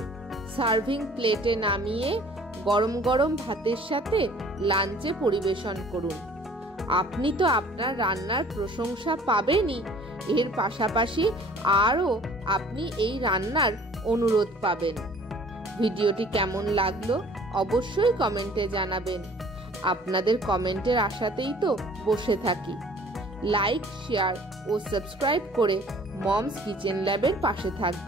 সার্ভিং প্লেটে নামিয়ে গরম গরম ভাতের সাথে লাঞ্চে পরিবেশন করুন। আপনি তো আপনার রান্নার প্রশংসা পাবেনই, এর পাশাপাশি আরও আপনি এই রান্নার অনুরোধ পাবেন। ভিডিওটি কেমন লাগলো অবশ্যই কমেন্টে জানাবেন। আপনাদের কমেন্টের আশাতেই তো বসে থাকি। লাইক, শেয়ার ও সাবস্ক্রাইব করে মমস কিচেন ল্যাবের পাশে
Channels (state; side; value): normal; both; correlation 0.52